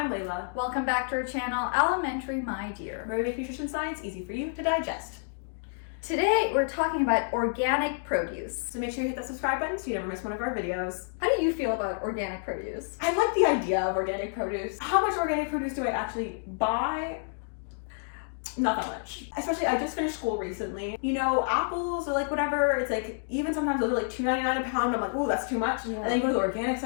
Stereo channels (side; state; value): right; silent; digital silence